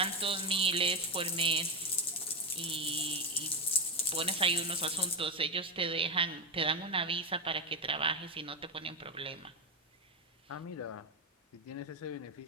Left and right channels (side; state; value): both; normal; correlation 0.10